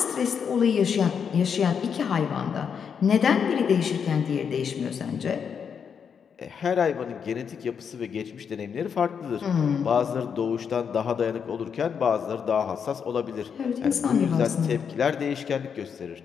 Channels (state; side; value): quieter; right; 7.0 dB